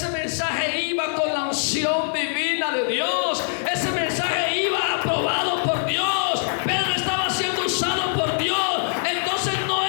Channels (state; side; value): silent; right; digital silence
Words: mensaje iba con la unción divina de Dios. Ese mensaje iba aprobado por Dios. Pedro estaba siendo usado por Dios. Entonces no